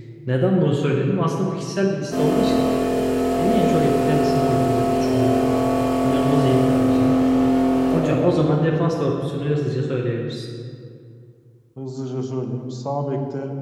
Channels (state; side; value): identical; both; correlation 1.00